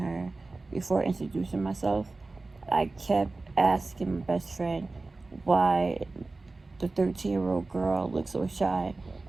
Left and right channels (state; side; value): quieter; left; 3.4 dB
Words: before introducing myself, I kept asking my best friend why the 13-year-old girl looks so shy